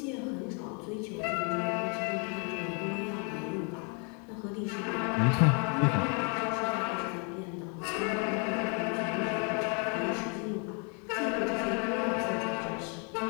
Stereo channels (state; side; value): quieter; right; 36.7 dB